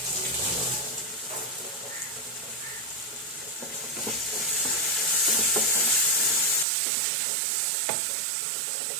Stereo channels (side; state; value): left; drops out; at 6.7 s